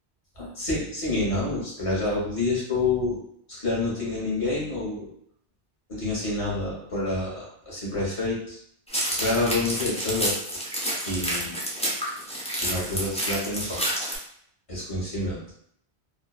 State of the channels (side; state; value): both; normal; correlation 0.00